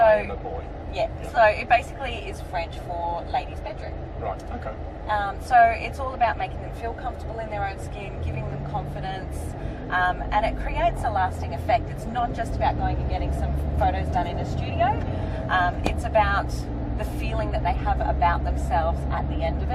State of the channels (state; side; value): identical; both; correlation 1.00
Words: I am a boy. Yeah, so it basically is French for ladies' bedroom. Right, okay. So it's all about making them feel comfortable in their own skin, giving them confidence, and it creates a lasting effect. It's not just about going and getting some photos done in a studio. It's about the feeling that they have about themselves at the end of